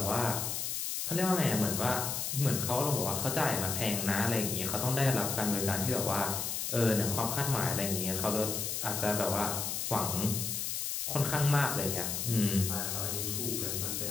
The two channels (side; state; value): left; noise; hiss, 2 dB below the sound